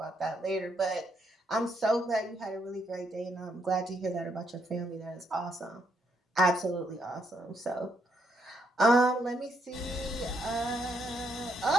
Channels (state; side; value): normal; both; correlation 0.75